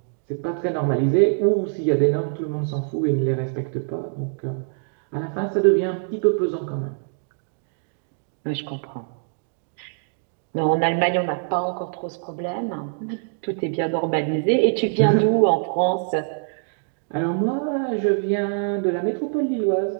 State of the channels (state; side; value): silent; left; digital silence